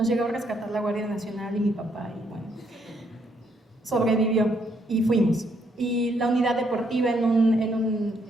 llegó a rescatar la Guardia Nacional y mi papá, y bueno, sobrevivió y fuimos. Y la unidad deportiva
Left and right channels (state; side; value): normal; both; correlation 0.73